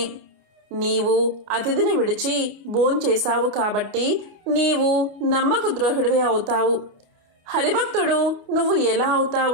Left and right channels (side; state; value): left; late; 29 ms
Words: నీవు అతిథిని విడిచి భోంచేశావు కాబట్టి నీవు నమ్మక ద్రోహుడివే అవుతావు. హరిభక్తుడు నువ్వు ఎలా